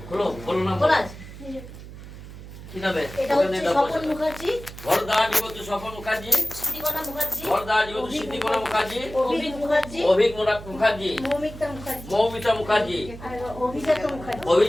বলো বলো না বলা আছে। কি নামে? এটা হচ্ছে স্বপন মুখার্জি, ভরদা জীবত স্বপন মুখার্জি, সিদ্ধিকণা মুখার্জি, ভরদা জীবত সিদ্ধিকণা মুখার্জি, অভিক মুখার্জি, অভিক মুখার্জি, মৌমিতা মুখার্জি, মৌমিতা মুখার্জি, আর অভিজাত মুখার্জি।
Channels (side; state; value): right; noise; hum, 14 dB below the sound